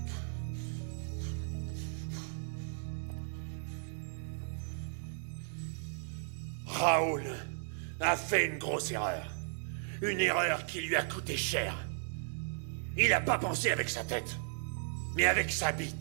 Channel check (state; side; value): silent; left; digital silence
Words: Raoul a fait une grosse erreur. Une erreur qui lui a coûté cher. Il n'a pas pensé avec sa tête, mais avec sa